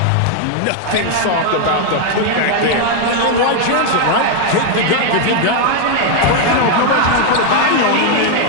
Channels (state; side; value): different; both; correlation 0.01